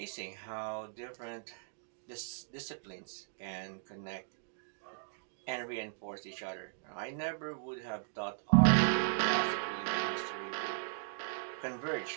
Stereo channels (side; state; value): left; silent; digital silence